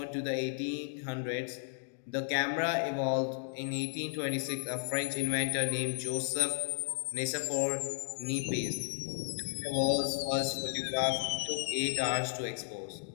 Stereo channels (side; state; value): right; silent; digital silence